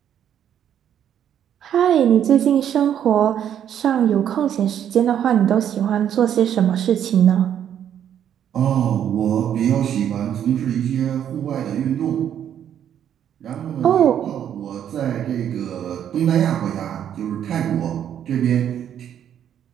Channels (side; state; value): left; quieter; 9.7 dB